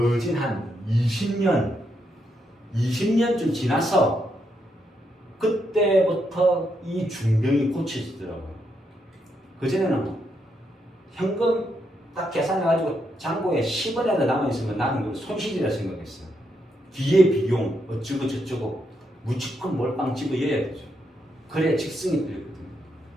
한 20년쯤 지나서 그때부터 이 중병이 고쳐지더라고요. 그전에는 현금 딱 계산해가지고 잔고에 10원이라도 남아있으면 나는 그걸 손실이라 생각했어요. 뒤에 비용 어쩌고 저쩌고 무조건 몰빵 집어여야 되죠. 그래야 직성이 들거든요.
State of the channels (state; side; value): normal; both; correlation 0.80